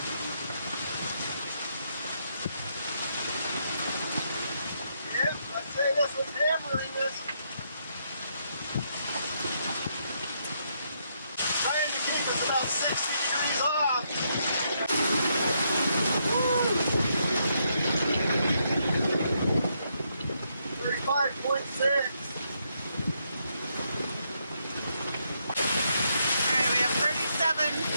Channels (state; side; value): inverted; both; correlation -0.77